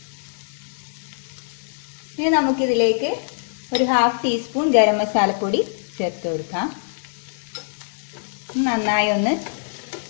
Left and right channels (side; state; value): right; silent; digital silence